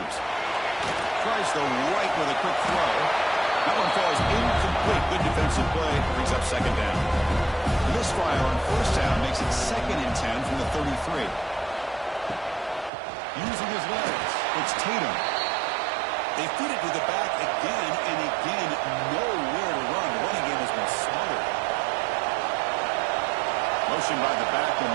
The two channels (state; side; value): drops out; left; at 12.9 s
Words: Tries the right with a quick throw. That one falls incomplete. Good defensive play. Brings up 2nd down. The misfire on 1st down makes it 2nd and 10 from the 33. Using his legs, it's Tatum. They feed it to the back again and again. Nowhere to run. The running game has been smothered. Motion by the back will